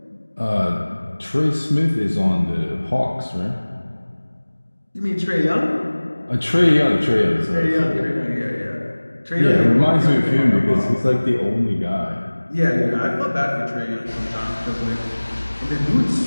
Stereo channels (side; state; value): both; inverted; correlation -1.00